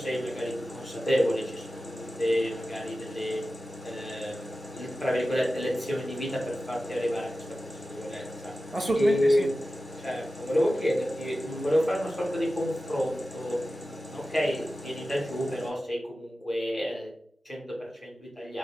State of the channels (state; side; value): normal; both; correlation 0.94